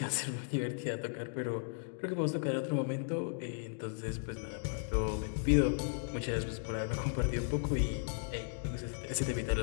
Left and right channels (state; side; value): silent; right; digital silence